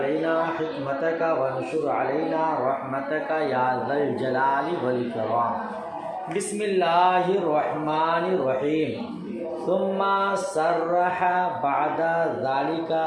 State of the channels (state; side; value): identical; both; correlation 1.00